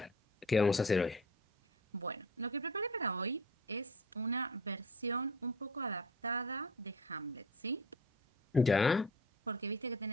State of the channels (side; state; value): both; normal; correlation 0.37